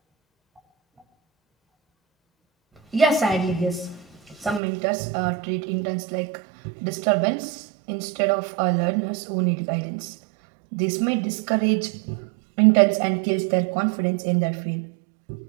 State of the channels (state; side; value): drops out; left; at 4.6 s